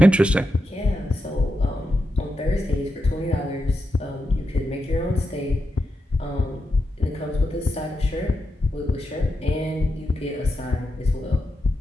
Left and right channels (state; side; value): normal; both; correlation 0.87